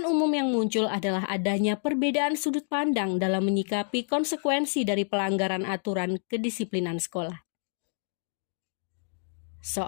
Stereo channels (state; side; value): silent; right; digital silence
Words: umum yang muncul adalah adanya perbedaan sudut pandang dalam menyikapi konsekuensi dari pelanggaran aturan kedisiplinan sekolah.